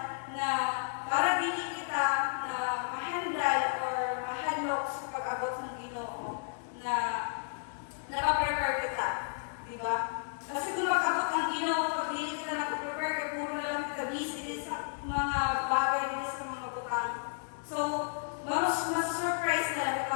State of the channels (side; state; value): right; silent; digital silence